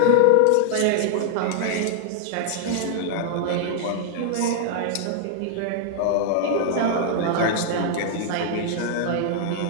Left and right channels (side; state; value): both; different; correlation 0.00